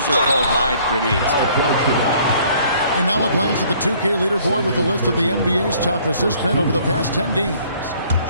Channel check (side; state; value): both; inverted; correlation -0.58